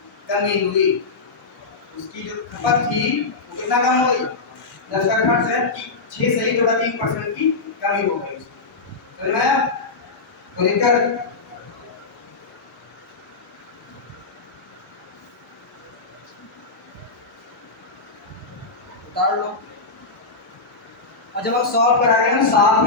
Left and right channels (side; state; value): right; quieter; 3.9 dB